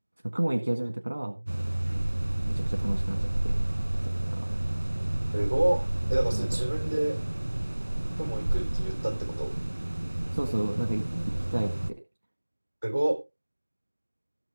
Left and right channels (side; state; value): both; inverted; correlation -1.00